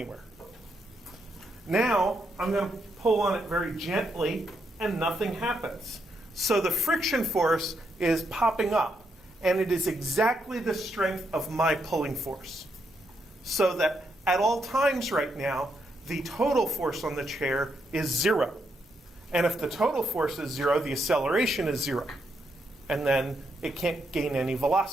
Now I'm going to pull on it very gently and nothing happens. So the friction force is popping up, and it is exactly the strength of my pulling force. So that at all times right now, the total force on the chair is 0. And if the total force is 0, the acceleration is 0. And then it can't gain any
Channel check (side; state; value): both; normal; correlation 0.79